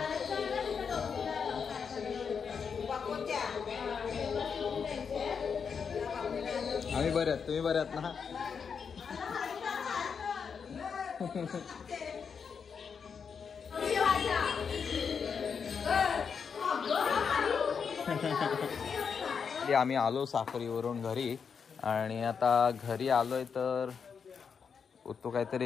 आम्ही बरे आहेत. तुम्ही बरे आहात ना. आम्ही आलो साखरीवरून घरी आणि आता घरी आलोय तर तो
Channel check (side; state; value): right; quieter; 6.3 dB